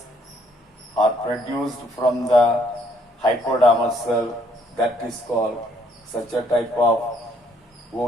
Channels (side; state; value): both; normal; correlation 0.67